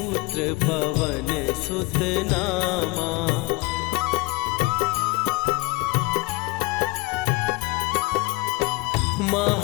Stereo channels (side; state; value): right; quieter; 24.1 dB